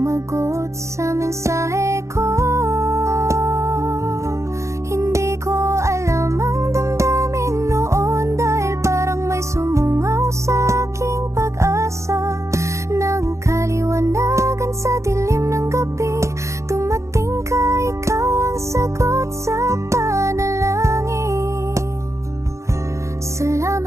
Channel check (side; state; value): left; late; 0.14 ms